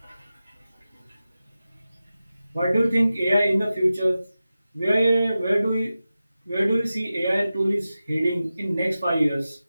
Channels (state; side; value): inverted; both; correlation -0.94